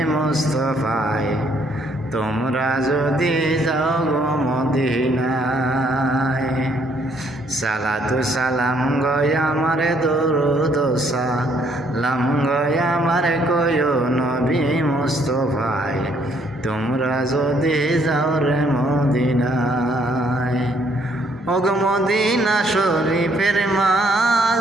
মুস্তফায় তোমরা যদি যাও গো মদিনায়। সালাতু সালাম গয়া মারে দুরুদ সালাম গয়া মারে কয়ো নবী মুস্তফায় তোমরা যদি যাও রে মদিনায়। ওগ মদিনা শরীফের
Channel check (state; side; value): normal; both; correlation 0.67